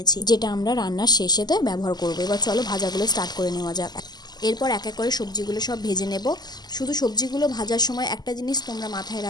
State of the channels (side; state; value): right; late; 0.20 ms